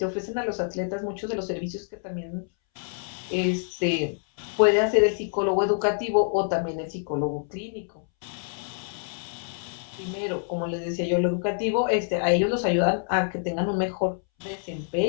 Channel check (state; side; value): silent; right; 60 dB below the other